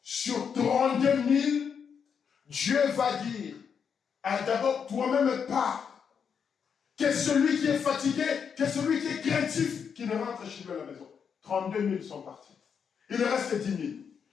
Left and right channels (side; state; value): right; quieter; 6.9 dB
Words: 32 000, Dieu va dire, ah, d'abord toi-même pars. Que celui qui est fatigué, que celui qui est craintif, qui ne rentre chez lui à la maison. 32 000 sont partis. Il reste 10 000.